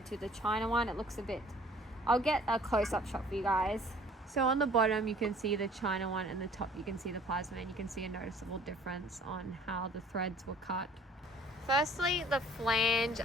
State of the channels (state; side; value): normal; both; correlation 0.54